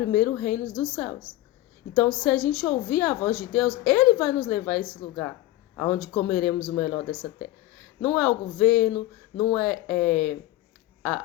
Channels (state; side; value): quieter; right; 15.8 dB